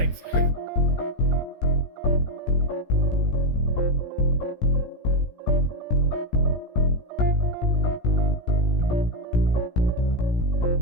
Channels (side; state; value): right; late; 17 ms